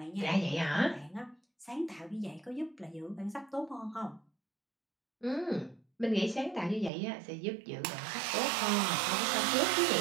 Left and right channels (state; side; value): drops out; left; at 6.9 s